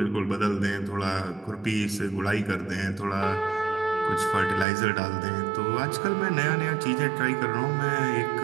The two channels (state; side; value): drops out; left; at 4.7 s